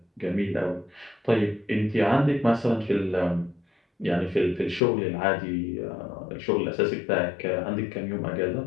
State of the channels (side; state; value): right; drops out; at 4.8 s